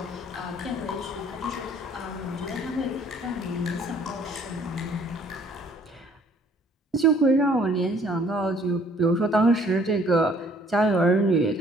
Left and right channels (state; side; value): normal; both; correlation 0.59